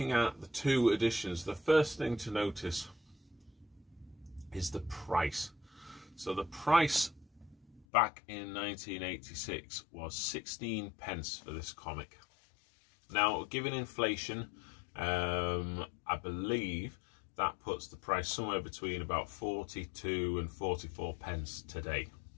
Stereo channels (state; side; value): drops out; right; at 7.9 s